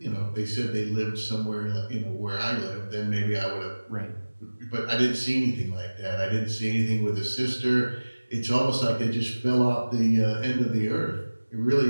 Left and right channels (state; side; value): inverted; both; correlation -1.00